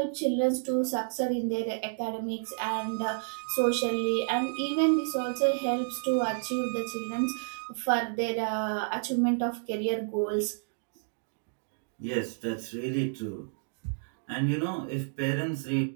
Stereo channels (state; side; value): silent; left; digital silence